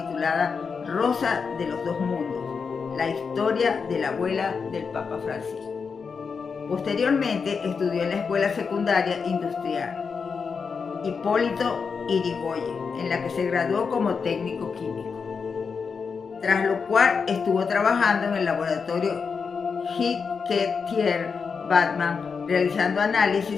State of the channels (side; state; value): right; quieter; 5.6 dB